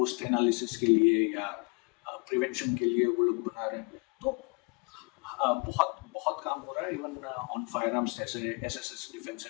एनालिसिस के लिए या प्रिवेंशन के लिए वो लोग बना रहे हैं। तो बहुत बहुत काम हो रहा है। इवन ऑन फायर आर्म्स जैसे SSS डिफेंस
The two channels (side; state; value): right; quieter; 32.7 dB